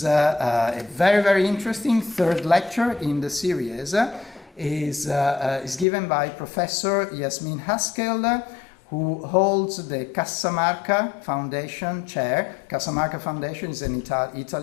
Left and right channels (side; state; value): right; drops out; at 5.9 s